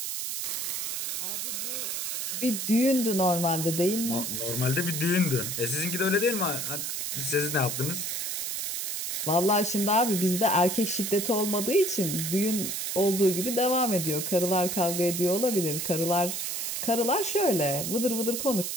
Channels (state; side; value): noise; right; hiss, 3 dB below the sound